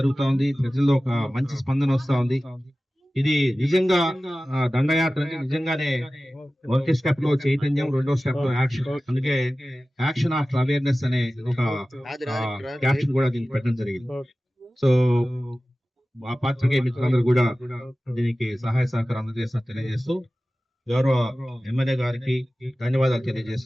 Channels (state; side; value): normal; both; correlation 0.96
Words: ఉంది. ప్రజల్లో ఒక మంచి స్పందన వస్తా ఉంది. ఇది నిజంగా దండయాత్ర అంటే నిజంగానే మొదటి స్టెప్ లో చైతన్యం, రెండో స్టెప్ లో యాక్షన్. అందుకే యాక్షన్ ఆఫ్ అవేర్నెస్ అనే ఒక క్యాప్షన్ కూడా దీనికి పెట్టడం జరిగింది. సో ఆ పాత్రికేయ మిత్రులందరూ కూడా దీనికి సహాయ సహకారం అందజేస్తున్నా తెలియజేస్తూ గౌరవ ఎమ్మెల్యే గారికి ధన్యవాదాలు